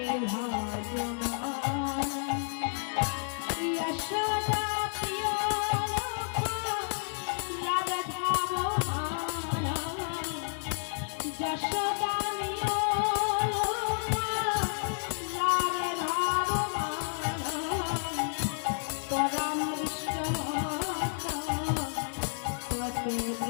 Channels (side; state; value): right; silent; digital silence